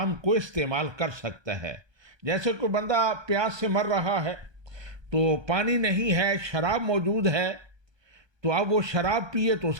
को इस्तेमाल कर सकता है। जैसे कोई बंदा प्यास से मर रहा है, तो पानी नहीं है, शराब मौजूद है, तो अब वो शराब पिए तो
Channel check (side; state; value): left; late; 1.2 ms